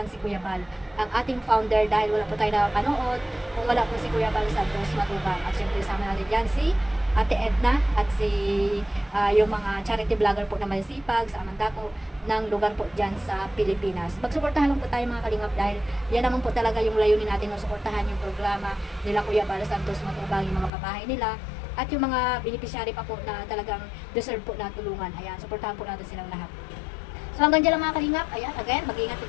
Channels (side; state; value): right; drops out; at 20.7 s